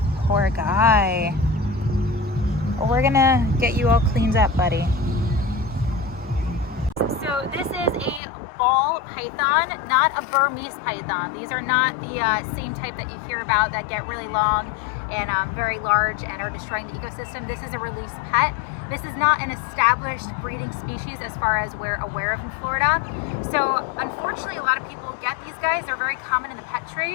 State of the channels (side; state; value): right; drops out; at 8.2 s